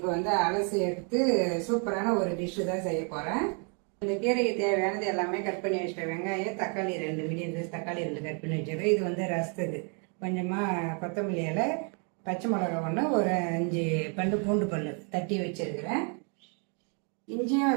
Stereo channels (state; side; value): quieter; left; 39.2 dB